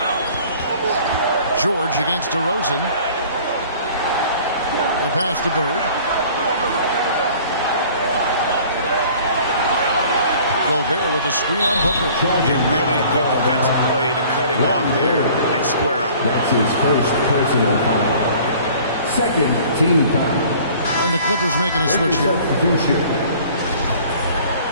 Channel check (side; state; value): both; inverted; correlation -0.50